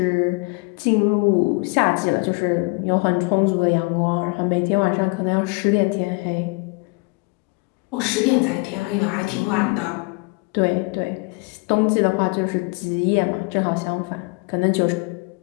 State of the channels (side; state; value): right; quieter; 29.5 dB